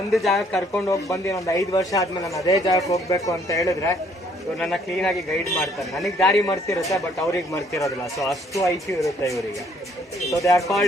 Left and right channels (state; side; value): normal; both; correlation 0.64